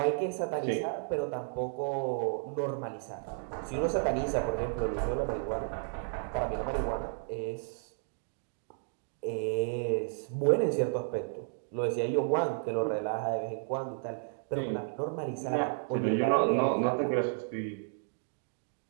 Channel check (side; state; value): left; silent; digital silence